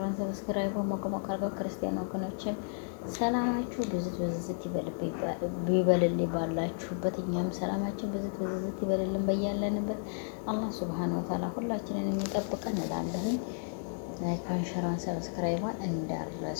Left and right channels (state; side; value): silent; right; digital silence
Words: ሰብስክራይብ ሞቅሞቅ አድርገው ክርስቲያን ወገኖችን ሰላማችሁ ብዝት ብዝት ይበልልኝ ባላችሁበት። እኛም ሰላማችን ብዝት ብዝት ይበልልን በያለንበት። አላህ ሱብሃነሁ ወተዓላ ሁላችንን የሚጠብቀን እላለሁኝ። ላይክ አንሸራን ሰብስክራይቧን